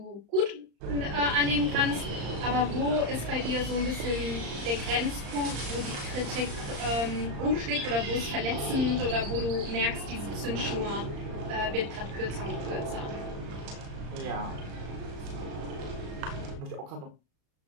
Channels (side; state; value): left; late; 35 ms